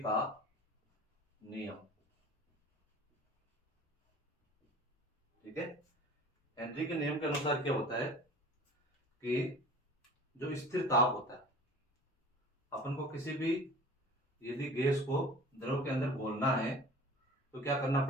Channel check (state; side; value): normal; both; correlation 0.43